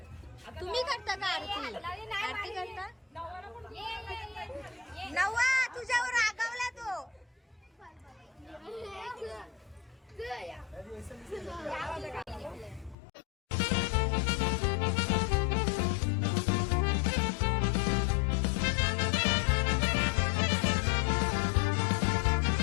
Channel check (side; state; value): right; drops out; at 13.0 s